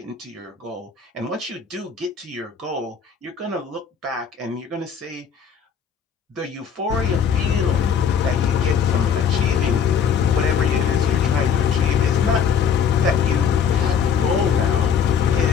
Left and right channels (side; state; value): right; quieter; 7.2 dB